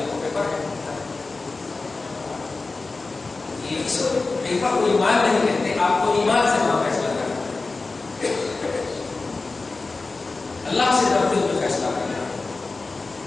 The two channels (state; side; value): quieter; right; 3.7 dB